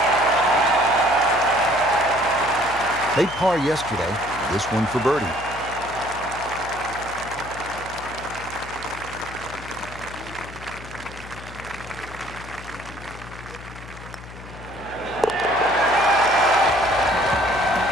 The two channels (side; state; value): left; noise; hum, 15 dB below the sound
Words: Played par yesterday. This one for birdie.